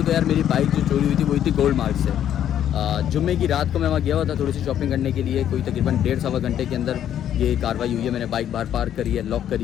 तो यार, मेरी बाइक जो चोरी हुई थी वो थी गोल्ड मार्क से। जुम्मे की रात को मैं वहाँ गया हुआ था थोड़ी सी शॉपिंग करने के लिए, कोई तकरीबन 1.5-1.25 घंटे के अंदर ये कार्रवाई हुई है। मैंने बाइक बाहर पार्क करी है, लॉक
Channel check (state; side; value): quieter; right; 10.4 dB